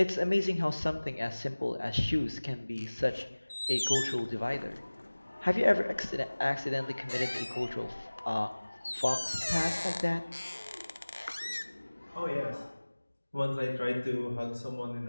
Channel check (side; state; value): both; inverted; correlation -1.00